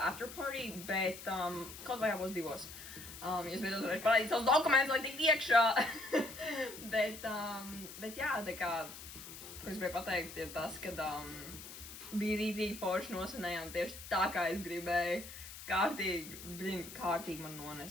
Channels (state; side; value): noise; left; hiss, 13 dB below the sound